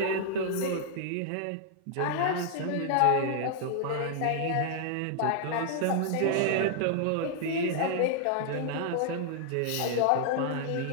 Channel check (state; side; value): different; both; correlation -0.01